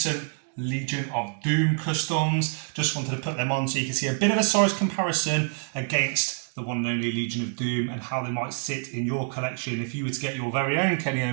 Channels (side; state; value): left; silent; 61 dB below the other